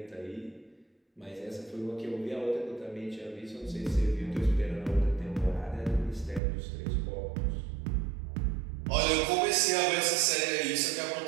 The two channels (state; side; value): drops out; left; at 6.4 s